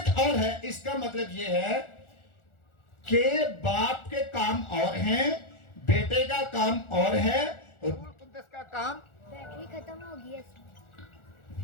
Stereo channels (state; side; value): late; right; 1.4 ms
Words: اور ہے, اس کا مطلب یہ ہے کہ باپ کے کام اور ہیں, بیٹے کا کام اور ہے, روح القدس کا کام, بیٹری ختم ہو گئی ہے.